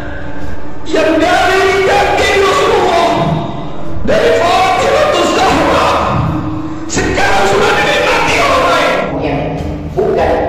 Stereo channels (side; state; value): both; identical; correlation 1.00